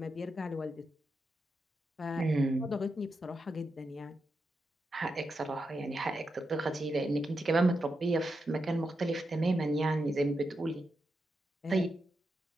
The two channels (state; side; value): normal; both; correlation 0.86